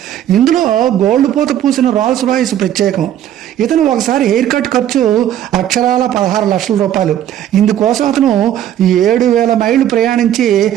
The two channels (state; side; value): quieter; left; 11.2 dB